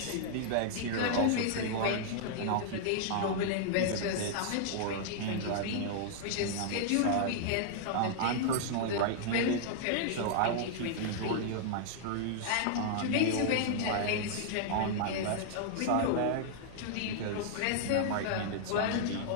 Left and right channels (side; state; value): both; different; correlation -0.01